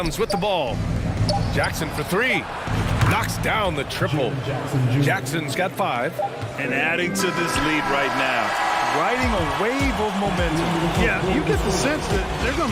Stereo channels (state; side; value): identical; both; correlation 1.00